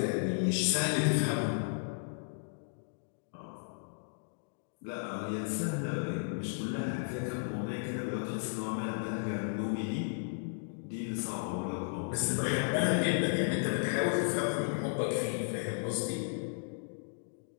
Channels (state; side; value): silent; right; digital silence